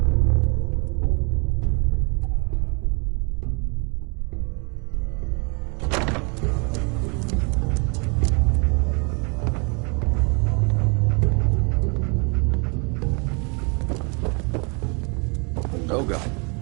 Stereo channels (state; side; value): quieter; left; 33.9 dB